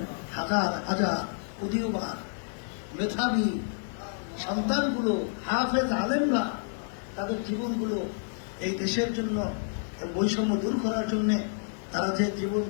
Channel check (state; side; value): silent; right; 58 dB below the other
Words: হাজার হাজার উদীয়মান মেধাবী সন্তানগুলো, হাফেজ আলেমরা তাদের জীবনগুলো এই দেশের জন্য, বৈষম্য দূর করার জন্য তারা যে জীবন